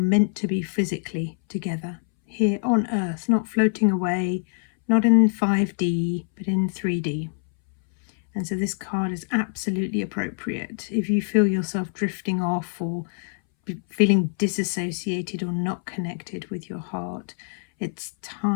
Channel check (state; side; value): silent; right; 61 dB below the other